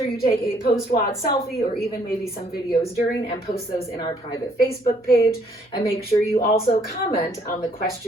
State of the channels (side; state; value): both; normal; correlation 0.66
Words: you take a post-WOD selfie or even maybe some videos during and post those in our private Facebook page. And make sure you also comment on the